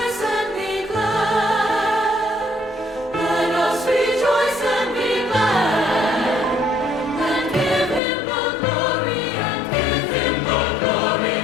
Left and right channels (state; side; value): drops out; right; at 8.0 s